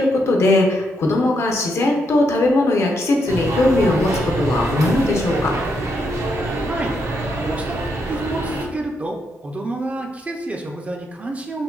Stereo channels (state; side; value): normal; both; correlation 0.79